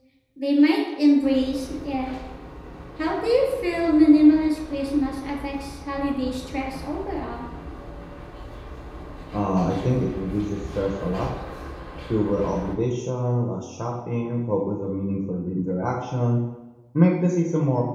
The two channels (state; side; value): identical; both; correlation 1.00